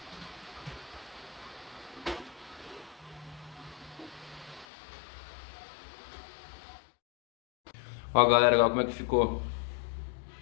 Ó, galera, olha como é que ficou.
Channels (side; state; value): right; drops out; at 4.7 s